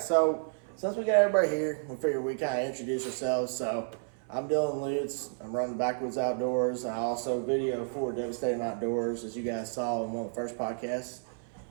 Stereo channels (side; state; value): left; silent; 57 dB below the other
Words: since we got everybody here, we figured we kind of introduce ourselves. So I'm Dylan Lutz. I'm running Backwoods Outdoors. I also video for Devastating Outdoors, as you guys saw in one of the first podcasts.